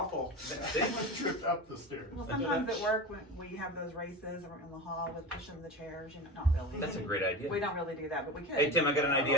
Someone tripped up the stairs. Well, sometimes at work when we have those races or in the hall with pushing the chairs, not really. That's a great idea. We don't really do that, but we could. Hey Tim, I got an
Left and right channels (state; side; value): normal; both; correlation 0.26